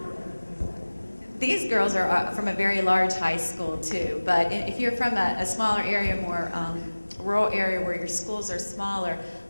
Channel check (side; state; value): both; inverted; correlation -1.00